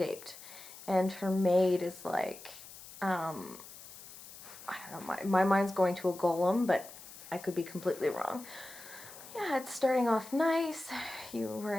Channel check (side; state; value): left; noise; hiss, 16 dB below the sound